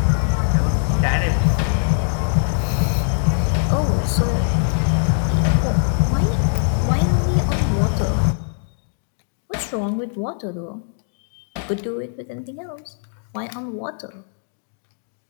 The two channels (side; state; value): right; silent; digital silence